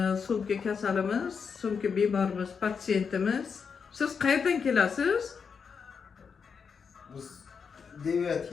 So'nggi kasalimiz, so'nggi bemorimiz, patsiyentimiz. Siz qayerdan kelasiz? Biz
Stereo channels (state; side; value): quieter; right; 6.1 dB